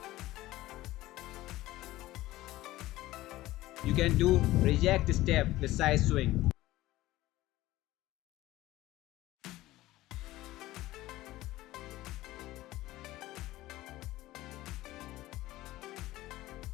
You can do reject step with side swing.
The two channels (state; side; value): quieter; right; 16.9 dB